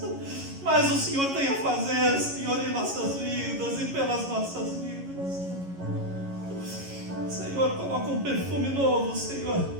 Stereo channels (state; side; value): late; left; 11 ms